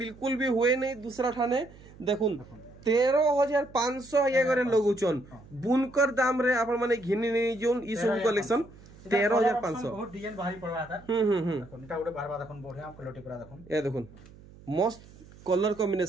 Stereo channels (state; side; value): noise; right; hum, 21 dB below the sound